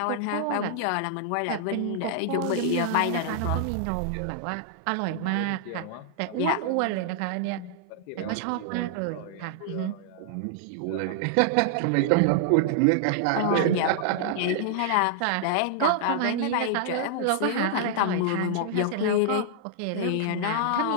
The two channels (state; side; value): different; both; correlation -0.01